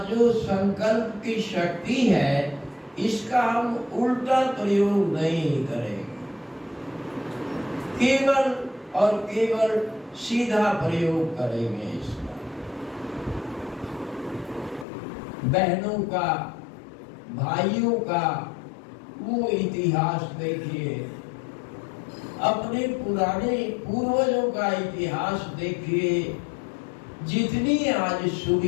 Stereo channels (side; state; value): right; drops out; at 14.9 s